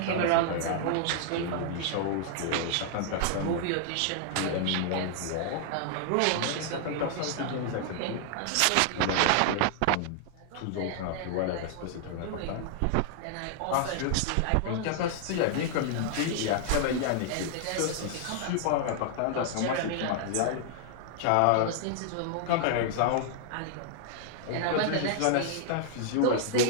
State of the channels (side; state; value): both; different; correlation 0.00